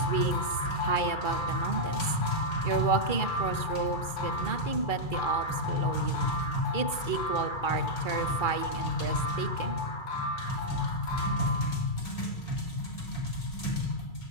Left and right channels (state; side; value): late; right; 2.3 ms